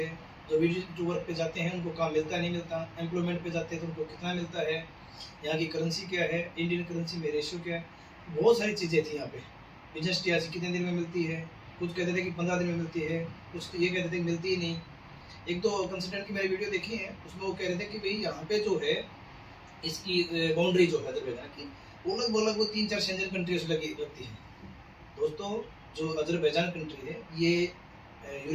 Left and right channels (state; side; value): identical; both; correlation 1.00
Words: जो विजिट वर्क पे जाते हैं उनको काम मिलता नहीं मिलता, एम्प्लॉयमेंट पे जाते हैं तो उनको कितना मिलता है, यहाँ की करेंसी क्या है, इंडियन करेंसी में रेशियो क्या है। बहुत सारी चीज़ें थी यहाँ पे। बिजनेस टीआरसी कितने दिन में मिलती है, कुछ कहते थे कि 15 दिन में मिलती है, कुछ ये कहते थे कि मिलती ही नहीं। एक तो कंसल्टेंट की मैंने वीडियो देखी है, उसमें वो कह रहे थे कि भाई यहाँ पे जो है इसकी बाउंड्री जो है अजरबैजान की वो लगभग वो 3-4 शेंजन कंट्रीज लगी लगती है। दोस्तों जो अजरबैजान कंट्री है ये